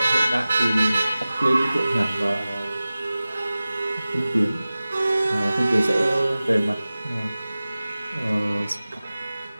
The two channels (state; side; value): inverted; both; correlation -0.97